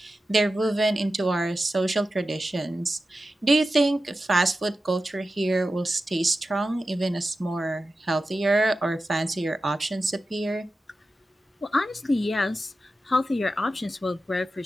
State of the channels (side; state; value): both; normal; correlation 0.92